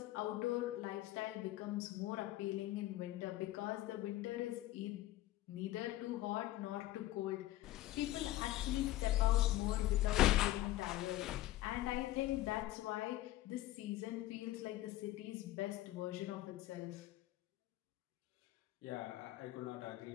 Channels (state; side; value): quieter; right; 15.6 dB